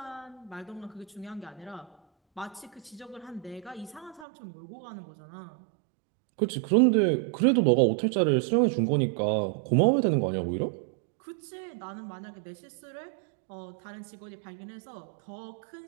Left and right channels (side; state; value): left; drops out; at 4.2 s